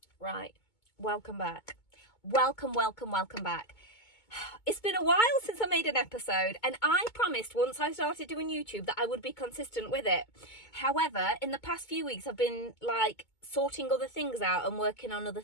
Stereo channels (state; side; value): late; right; 2.2 ms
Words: Right. Welcome back. Welcome back. It's been a while since I made an episode, and I promised once I started doing YouTube that I would be consistent with it. However, in the past few weeks, I've been sorting other things out and working on other